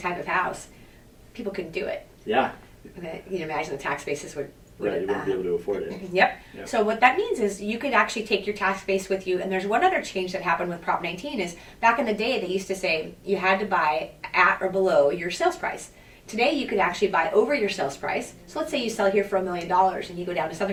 of house, people couldn't do it. Yeah. You can imagine the tax bases would Right, you wouldn't be able to afford it. Yep. So what that means is you could actually take your tax base with you. And there's one other change that happened with Prop 19 is back in the day they used to say you had to buy at or below your sales price. Today you could actually buy over your sales price. So let's say you sell here for $1 million and you go down to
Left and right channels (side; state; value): both; identical; correlation 1.00